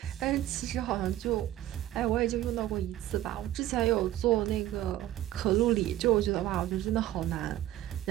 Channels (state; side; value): quieter; left; 13.7 dB